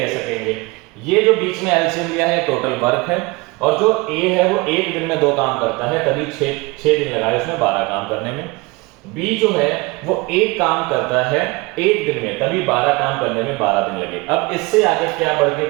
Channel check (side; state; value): left; quieter; 24.7 dB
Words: सकेंगे। ये जो बीच में एलसीएम लिया है टोटल वर्क है, और जो ए है वो एक दिन में 2 काम करता है, तभी 6 दिन लगाए उसमें 12 काम करने में। बी जो है वो एक काम करता है एक दिन में, तभी 12 काम करने में 12 दिन लगे। अब इससे आगे क्या बढ़